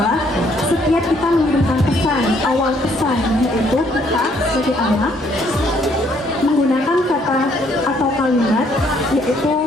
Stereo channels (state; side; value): normal; both; correlation 0.67